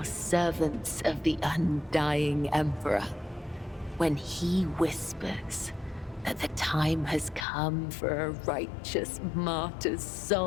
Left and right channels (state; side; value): drops out; right; at 7.5 s